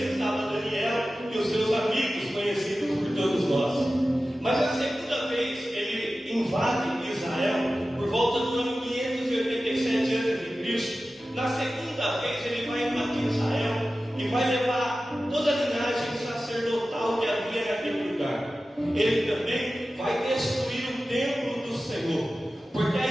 estava Daniel e os seus amigos, conhecidos por todos nós. Mas a segunda vez ele invade Israel por volta do ano 587 a.C. Na segunda vez ele vai invadir Israel e vai levar toda a linhagem sacerdotal que havia naquele lugar. Ele também vai destruir Senhor. Porque a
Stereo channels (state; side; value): normal; both; correlation 0.95